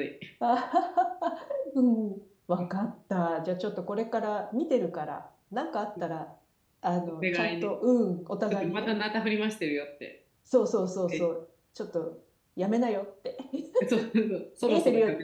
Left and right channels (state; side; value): identical; both; correlation 1.00